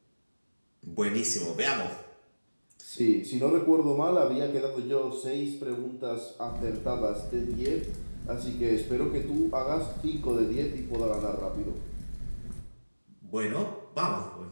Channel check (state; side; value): inverted; both; correlation -1.00